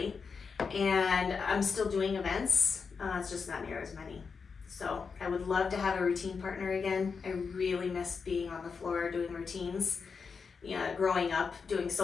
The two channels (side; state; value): right; quieter; 5.4 dB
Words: and I'm still doing events. It's just not near as many. So I would love to have a routine partner again. I really miss being on the floor doing routines. Growing up doing